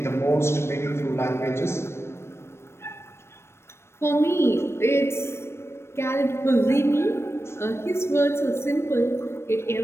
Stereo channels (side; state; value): right; late; 0.12 ms